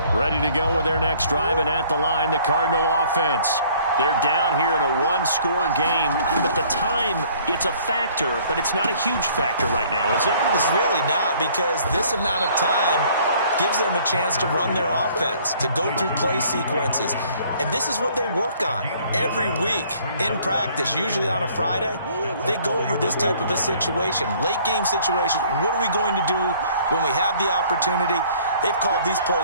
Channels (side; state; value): both; inverted; correlation -0.57